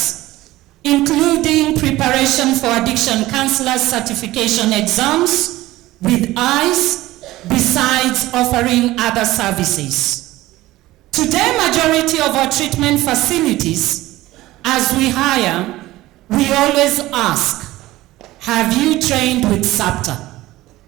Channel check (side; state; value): left; quieter; 17.2 dB